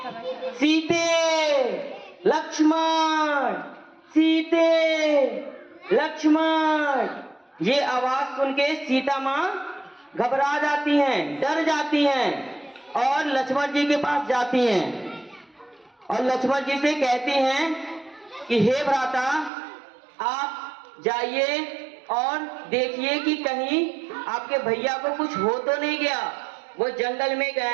सीते लक्ष्मण, सीते लक्ष्मण। ये आवाज सुन के सीता माँ घबरा जाती हैं, डर जाती हैं और लक्ष्मण जी के पास जाती हैं और लक्ष्मण जी से कहती हैं कि हे भ्राता, आप जाइए और देखिए कि कहीं आपके भैया को कुछ हो तो नहीं गया, वो जंगल में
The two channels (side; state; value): left; drops out; at 19.5 s